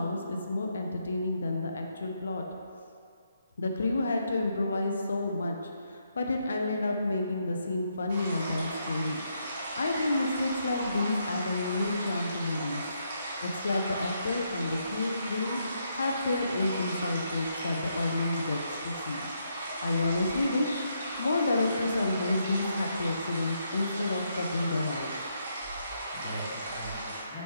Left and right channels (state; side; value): inverted; both; correlation -0.77